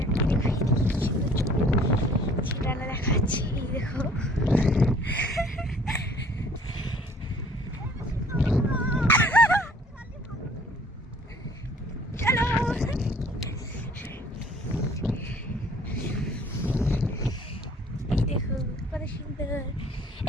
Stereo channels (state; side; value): normal; both; correlation 0.55